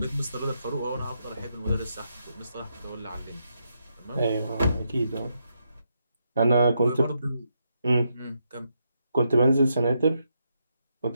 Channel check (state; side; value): inverted; both; correlation -0.81